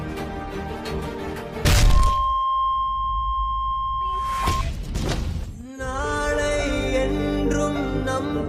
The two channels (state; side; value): identical; both; correlation 1.00